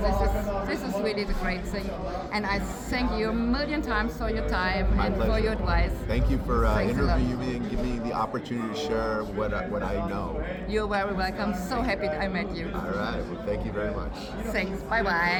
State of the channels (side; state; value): both; identical; correlation 1.00